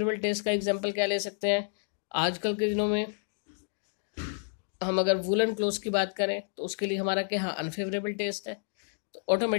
टेस्ट का एग्जांपल क्या ले सकते हैं, आजकल के दिनों में हम अगर वुलन क्लोथ की बात करें तो उसके लिए हमारा क्या, अनफेवरेबल टेस्ट है, तो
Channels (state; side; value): silent; right; digital silence